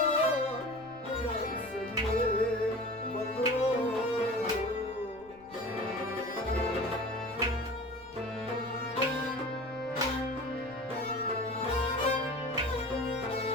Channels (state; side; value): noise; right; rumble, 25 dB below the sound